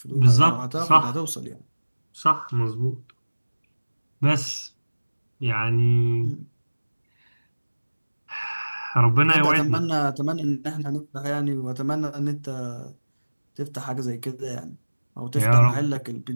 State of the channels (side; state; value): both; inverted; correlation -1.00